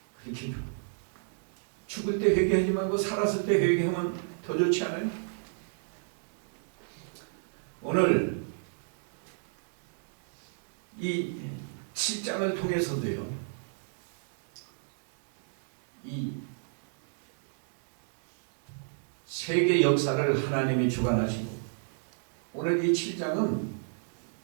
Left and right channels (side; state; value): left; silent; digital silence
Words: 그렇게 죽을 때 회개하지 말고 살았을 때 회개하면 더 좋지 않아요? 오늘 이 7장을 통해서도요. 이 세계 역사를 하나님이 주관하시고 오늘 이 7장은